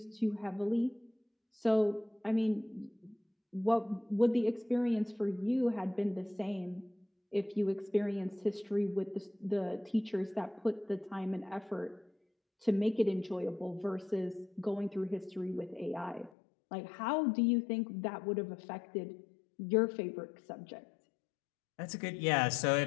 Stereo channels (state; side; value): drops out; right; at 16.3 s